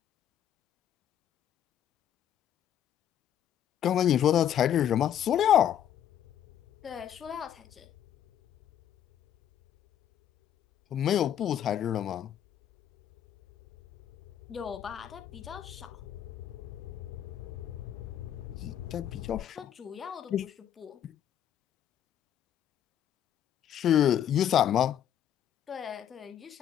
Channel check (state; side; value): quieter; right; 10.1 dB